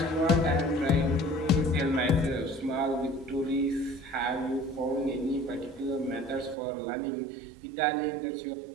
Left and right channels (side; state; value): left; drops out; at 6.6 s